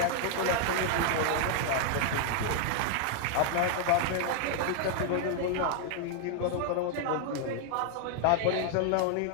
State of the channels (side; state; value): both; different; correlation 0.00